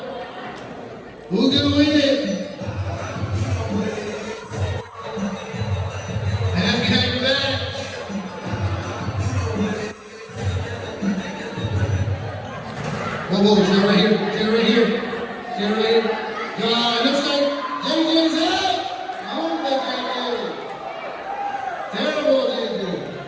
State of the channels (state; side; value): identical; both; correlation 1.00